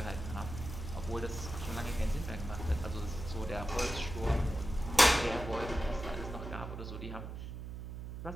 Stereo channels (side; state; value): right; noise; hum, 8 dB below the sound